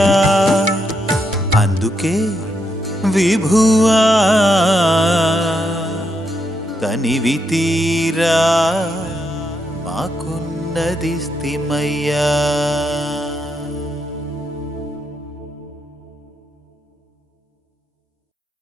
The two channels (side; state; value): both; normal; correlation 0.80